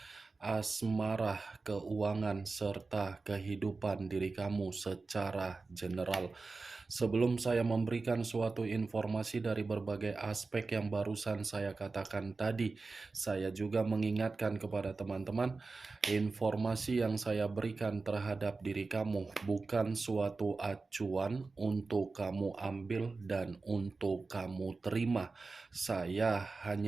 asmara, keuangan, serta kehidupan diri kamu secara general. Sebelum saya memberikan suatu informasi dari berbagai aspek yang barusan saya katakan tadi, saya juga mengingatkan kepada teman-teman, informasi yang saya berikan terhadap diri kamu bukan suatu acuan untuk kamu ambil dan untuk kamu terima. Saya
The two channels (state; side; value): quieter; left; 3.9 dB